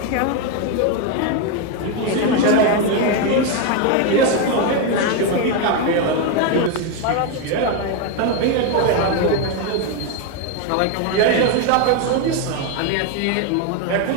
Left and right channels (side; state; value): both; different; correlation 0.02